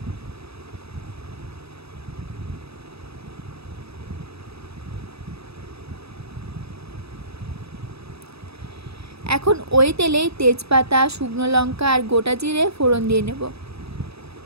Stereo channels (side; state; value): left; late; 0.78 ms